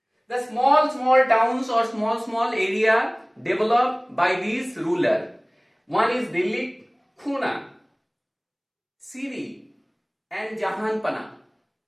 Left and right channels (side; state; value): both; identical; correlation 1.00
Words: The small towns or small area developed by these rulers. One is Delhi, Khuna, Siri and Jahanpana.